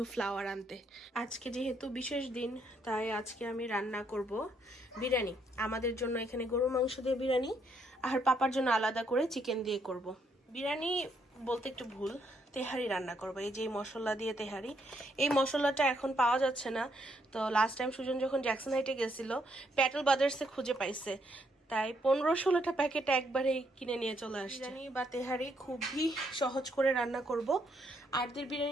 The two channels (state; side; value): normal; both; correlation 0.73